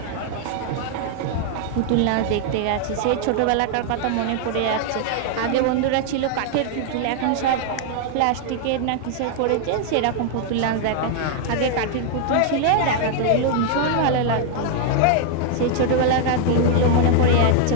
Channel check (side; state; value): both; different; correlation 0.00